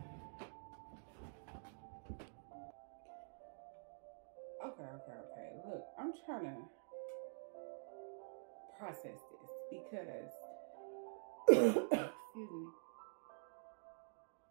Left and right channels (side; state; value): left; silent; digital silence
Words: Okay. Look, I'm trying to process this because, excuse me.